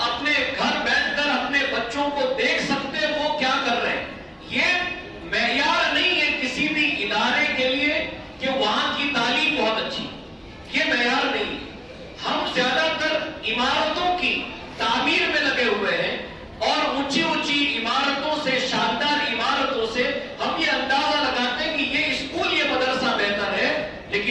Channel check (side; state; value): both; identical; correlation 1.00